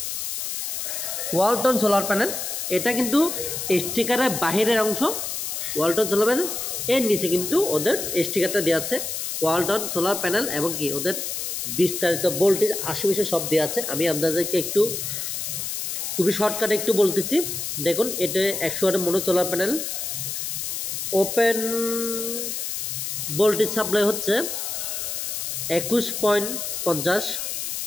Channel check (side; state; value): left; noise; hiss, 4 dB below the sound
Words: ওয়ালটন সোলার প্যানেল, এটা কিন্তু স্টিকারের বাহিরের অংশ ওয়ালটন সোলার প্যানেল। এর নিচে কিন্তু ওদের স্টিকারটা দেওয়া আছে ওয়ালটন সোলার প্যানেল এবং কি ওদের বিস্তারিত ভোল্টেজ আশেপাশে সব দেওয়া আছে। আমি আপনাদেরকে একটু খুবই শর্টকাটে একটু বলতেছি। দেখুন, এটা 100 ওয়াটের mono solar panel. Open voltage supply হচ্ছে 21.50